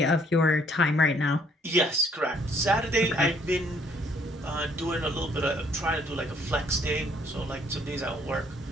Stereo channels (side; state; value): both; normal; correlation 0.65